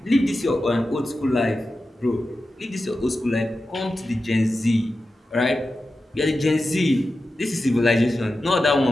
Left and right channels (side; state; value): both; normal; correlation 0.92